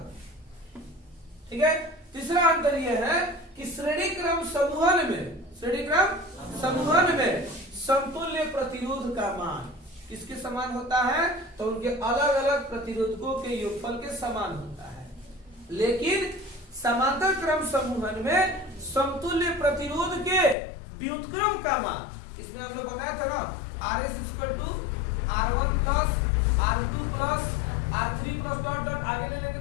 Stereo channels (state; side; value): drops out; right; at 20.6 s